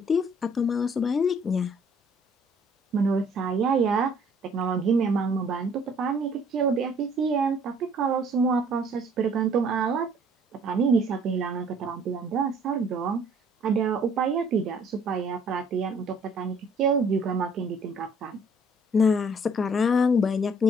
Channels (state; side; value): normal; both; correlation 0.59